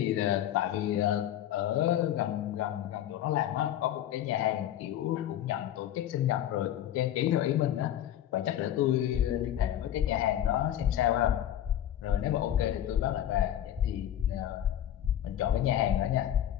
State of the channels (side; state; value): right; quieter; 11.4 dB